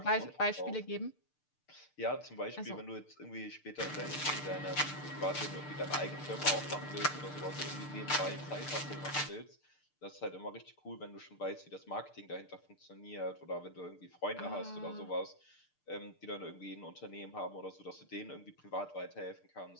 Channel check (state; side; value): late; right; 6.7 ms